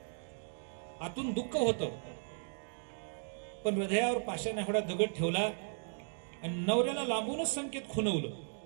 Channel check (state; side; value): silent; left; digital silence